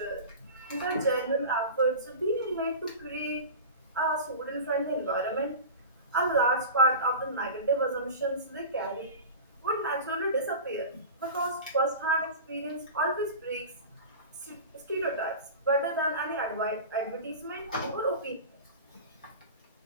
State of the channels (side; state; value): both; inverted; correlation -0.32